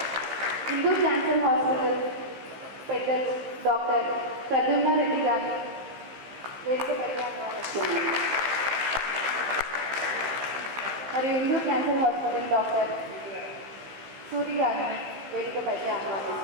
హిందూ క్యాన్సర్ హాస్పిటల్ పెద్దలు డాక్టర్ ప్రద్యుమ్న రెడ్డి గారిని వేదికపైకి ఆహ్వానిస్తున్నాను. మరియు Hindu cancer hospital doctor Suri గారిని వేదికపైకి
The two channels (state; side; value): late; left; 15 ms